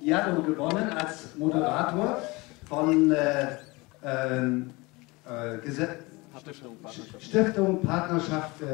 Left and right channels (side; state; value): right; quieter; 24.2 dB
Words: Diallo gewonnen als Moderator von Stiftung Partnerschaft